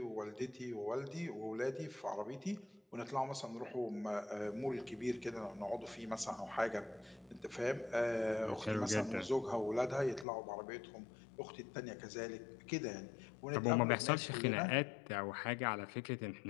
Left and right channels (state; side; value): drops out; right; at 10.2 s